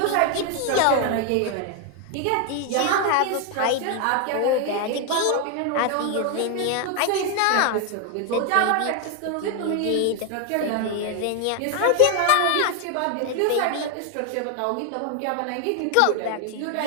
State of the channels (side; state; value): both; different; correlation 0.01